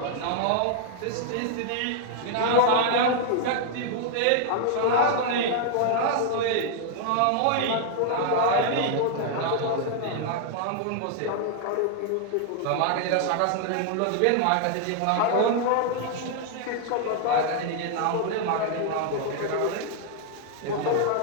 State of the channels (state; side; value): different; both; correlation 0.00